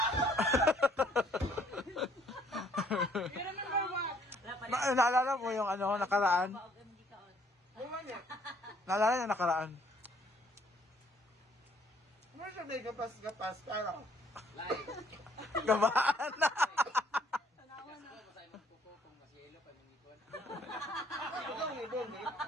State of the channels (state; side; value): normal; both; correlation 0.63